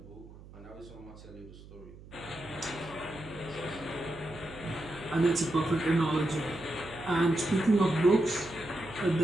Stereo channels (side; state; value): right; noise; hum, 18 dB below the sound